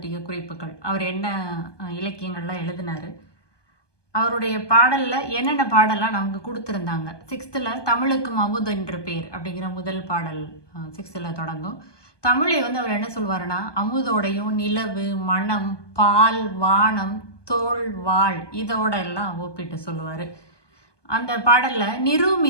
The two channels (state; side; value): late; right; 1.2 ms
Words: குறிப்புகள். அவர் என்ன இலக்கியங்கள்லாம் எழுதினார், அவருடைய பாடலில் என்னென்ன பாடலாம் நமக்கு கொடுத்துருந்தாங்க. 6th தமிழுக்கும் அமுது என்று பேர் அப்படிங்கிற முதல் பாடல் 6th தொடங்கும். தமிழை அவர் என்ன சொல்வாருன்னா, அமுதோடையும் நிலவு, மனம், பால், வானம், தோல், வாழ் இதோட எல்லாம் ஒப்பிட்டு சொல்லுவார். அந்த பாடலில்